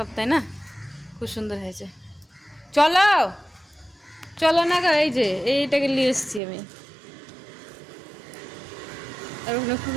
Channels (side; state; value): left; drops out; at 6.4 s